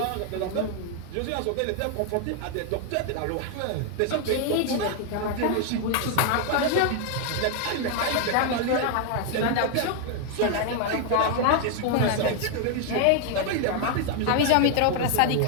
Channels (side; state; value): both; different; correlation 0.00